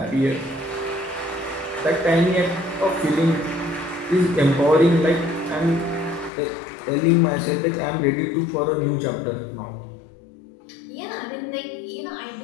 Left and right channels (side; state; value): right; drops out; at 6.3 s